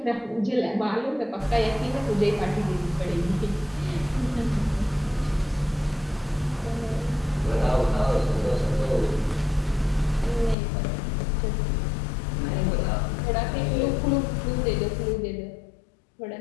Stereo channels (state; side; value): drops out; right; at 10.6 s